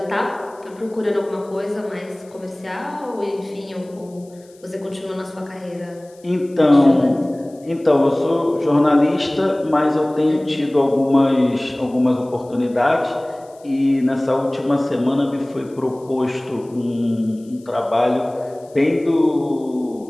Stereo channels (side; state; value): left; noise; hiss, 29 dB below the sound